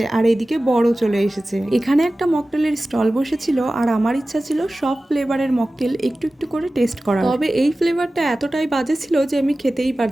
আর এইদিকে বড় চলে এসেছে। এখানে একটা মকটেলের স্টল বসেছিল, আর আমার ইচ্ছা ছিল সব ফ্লেভারের মকটেল একটু একটু করে টেস্ট করা। তবে এই ফ্লেভারটা এতটাই বাজে ছিল যে আমি খেতেই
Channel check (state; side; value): normal; both; correlation 0.96